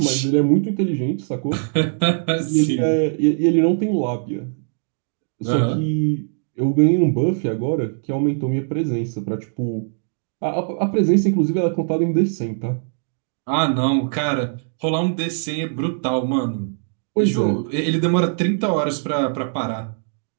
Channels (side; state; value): left; silent; 65 dB below the other